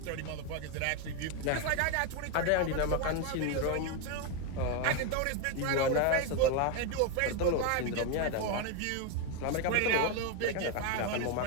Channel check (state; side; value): different; both; correlation 0.02